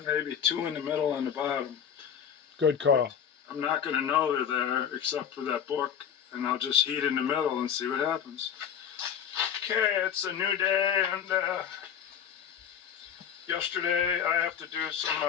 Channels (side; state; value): right; quieter; 8.4 dB